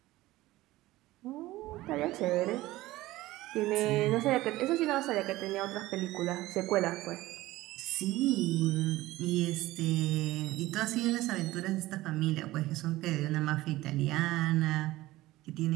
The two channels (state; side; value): quieter; left; 17.6 dB